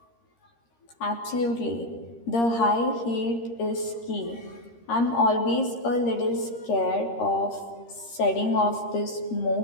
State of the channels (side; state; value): right; late; 13 ms